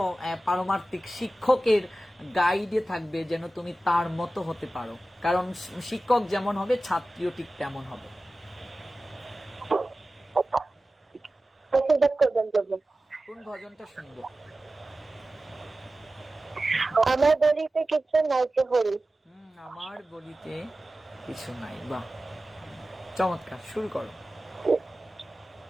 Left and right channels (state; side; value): normal; both; correlation 0.95